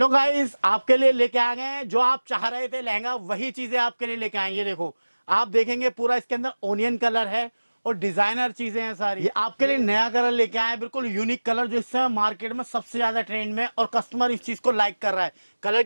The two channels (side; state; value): both; inverted; correlation -1.00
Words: गाइस, आपके लिए लेके आ गए हैं जो आप चाह रहे थे लहंगा, वही चीजें आपके लिए लेके आए। ये देखो, आप देखेंगे पूरा इसके अंदर ओनियन कलर है और डिजाइनर चीजें हैं सारी। ये आपके लिए नया कलर लेके आए हैं, बिल्कुल यूनिक कलर जो इस समय मार्केट में सबसे ज्यादा ट्रेंड में और कस्टमर इस चीज को लाइक कर रहा है। कलर